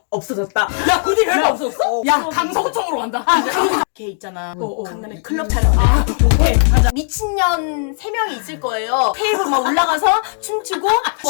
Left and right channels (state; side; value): silent; right; 65 dB below the other